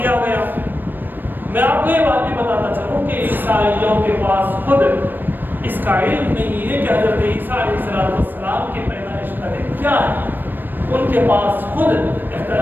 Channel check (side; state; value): left; late; 0.092 ms